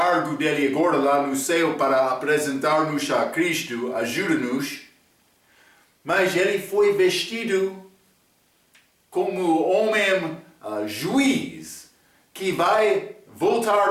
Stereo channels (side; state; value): both; identical; correlation 1.00